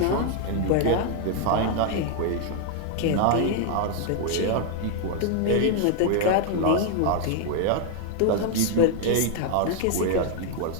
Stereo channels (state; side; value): different; both; correlation 0.00